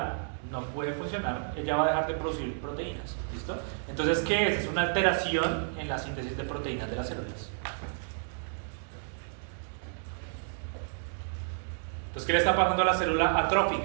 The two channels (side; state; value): left; silent; digital silence